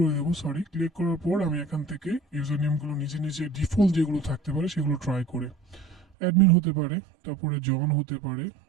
দেবো, সরি। ক্লিক করার পর আমি এখান থেকে ইউজার নেমগুলো নিজে নিজে ডিফল্ট যেগুলো থাকতে পারে সেগুলো ট্রাই করে, অ্যাডমিন হতে পারে, তারপরে জন হতে পারে,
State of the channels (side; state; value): left; drops out; at 6.1 s